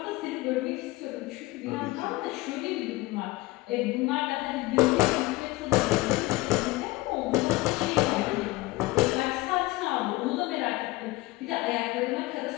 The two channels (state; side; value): quieter; right; 20.4 dB